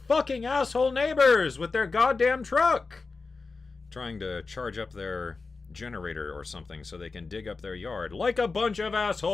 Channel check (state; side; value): quieter; right; 4.2 dB